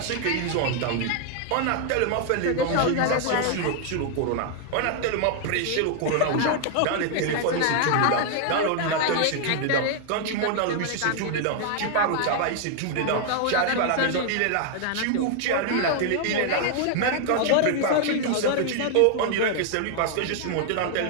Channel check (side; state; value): both; different; correlation 0.00